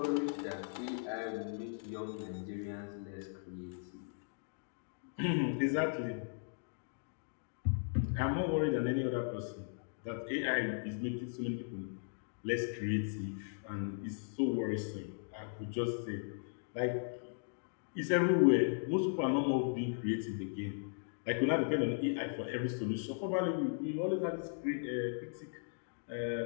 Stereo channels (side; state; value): right; silent; digital silence